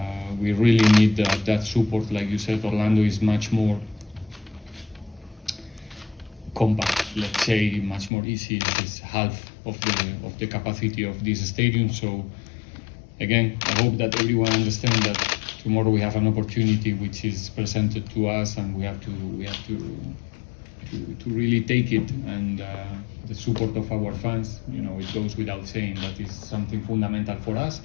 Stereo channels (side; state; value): right; drops out; at 8.1 s